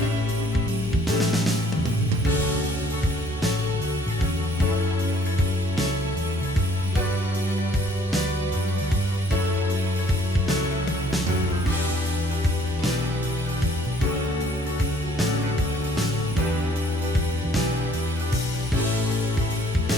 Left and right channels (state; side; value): normal; both; correlation 0.60